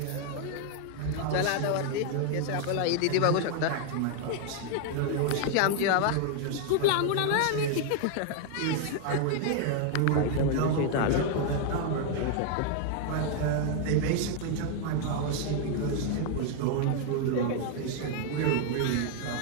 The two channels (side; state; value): both; different; correlation 0.00